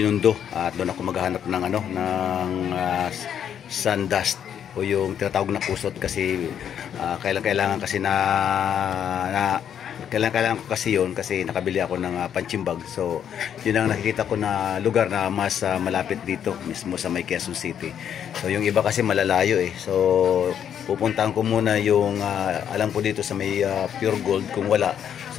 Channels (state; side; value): quieter; right; 9.0 dB